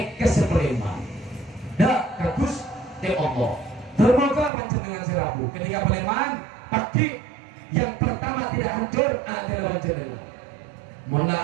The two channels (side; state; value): left; drops out; at 4.5 s